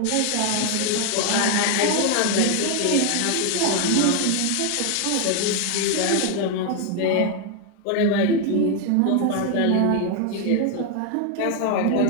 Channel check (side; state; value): both; different; correlation 0.01